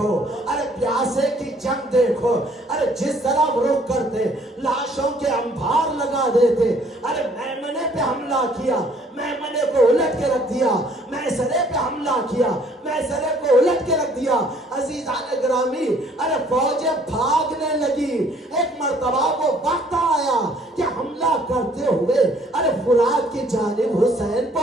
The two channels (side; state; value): both; normal; correlation 0.60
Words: ارے پیاسے کی جنگ دیکھو. ارے جس طرح رخ کرتے لاشوں کے انبار لگا دیتے. ارے میمنے پہ حملہ کیا، میمنے کو الٹ کے رکھ دیا، میسرے پہ حملہ کیا، میسرے کو الٹ کے رکھ دیا. عزیزان گرامی ارے فوجیں بھاگنے لگی. ایک مرتبہ وہ وقت آیا کہ حملہ کرتے ہوئے ارے فرات کی جانب حسین